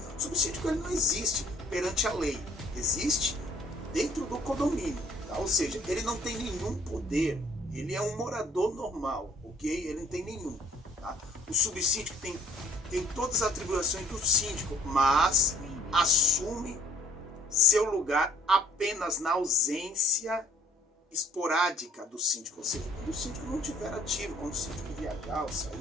o subsíndico ele não existe perante a lei, existe dentro do condomínio, tá? Ou seja, ele não tem nenhum poder, ele é um morador normal, ok? Ele não tem nenhum, tá? O subsíndico tem todas as atribuições do síndico, mas assume seu lugar apenas na ausência esporádica do síndico, ou seja, quando o síndico não estiver ativo, quando o síndico viajar ou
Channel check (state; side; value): normal; both; correlation 0.57